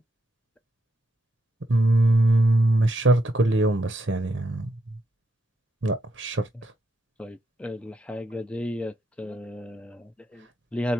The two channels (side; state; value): both; normal; correlation 0.81